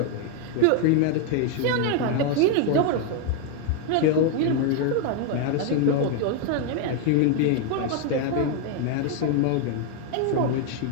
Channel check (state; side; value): different; both; correlation 0.01